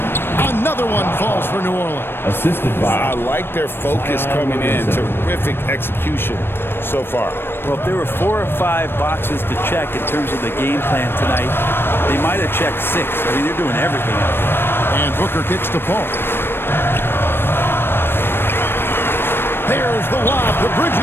Another one falls for New Orleans. Assisted by. I like their focus coming in. Terrific execution so far. Well, if there were 4 or 5 boxes to check in terms of the game plan tonight, they might have checked 6. I mean, they're doing everything out there. And Booker kicks to Paul. There's the lob to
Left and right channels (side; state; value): right; late; 0.10 ms